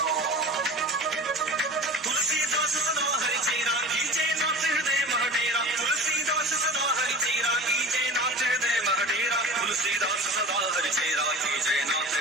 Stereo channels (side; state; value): both; normal; correlation 0.35